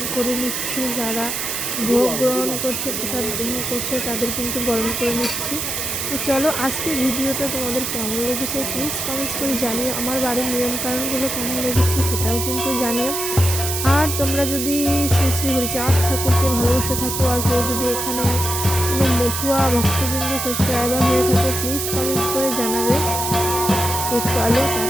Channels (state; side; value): noise; right; hiss, 2 dB below the sound